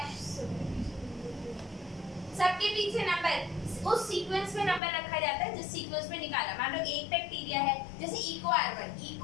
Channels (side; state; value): right; drops out; at 4.8 s